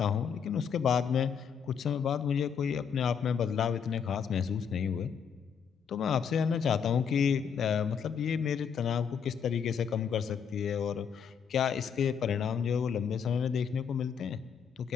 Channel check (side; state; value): right; quieter; 7.1 dB